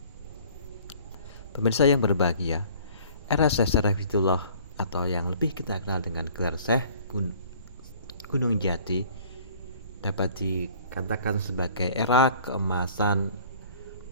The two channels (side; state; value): both; inverted; correlation -0.51